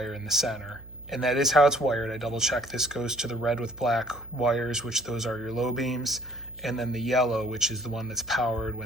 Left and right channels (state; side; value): noise; right; hum, 19 dB below the sound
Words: in the center. And that is how it's wired. I double checked. This goes to the red with black wires, which those are your low beams. And then the yellow, which is the one that's powered